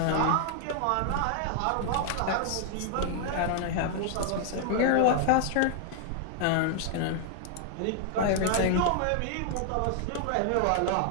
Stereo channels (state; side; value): different; both; correlation 0.00